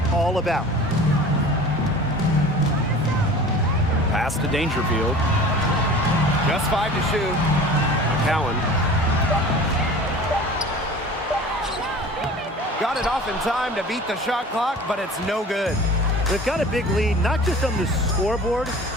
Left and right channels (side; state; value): both; normal; correlation 0.41